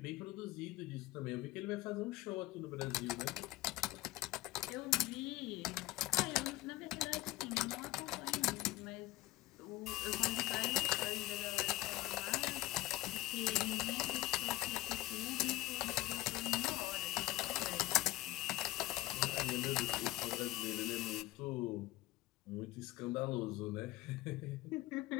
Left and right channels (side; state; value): right; quieter; 17.4 dB